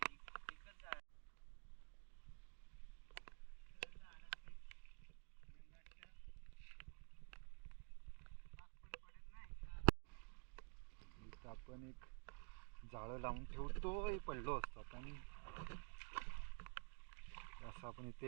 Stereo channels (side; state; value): left; quieter; 39.9 dB